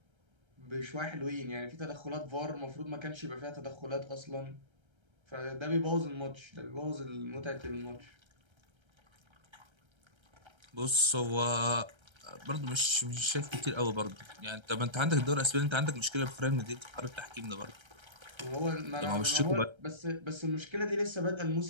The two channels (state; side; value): late; left; 1.3 ms